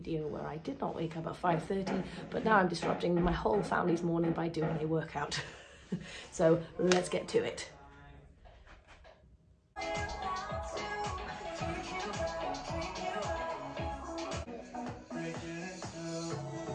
where I did not wake up at 5:30, but now I'm disrupting my whole family's morning by doing a workout. So let's get to it.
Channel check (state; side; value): identical; both; correlation 1.00